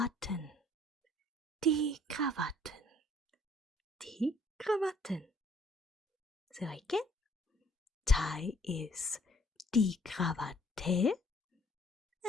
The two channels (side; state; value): both; normal; correlation 0.60